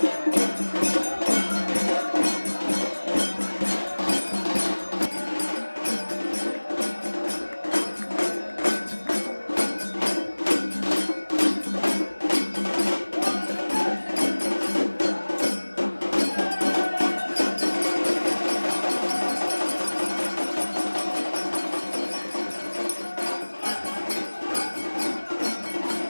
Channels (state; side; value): inverted; both; correlation -1.00